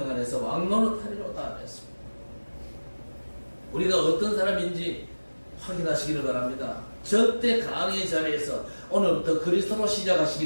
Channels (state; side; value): inverted; both; correlation -1.00